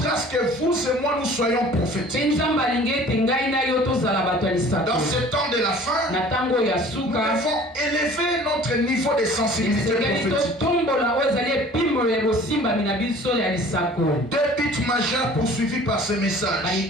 que vous et moi nous soyons prophétiques. Dans ce temps de la fin, nous devons élever notre niveau de sensibilité prophétique. Deux buts majeurs poursuivis par ce message.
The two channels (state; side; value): normal; both; correlation 0.48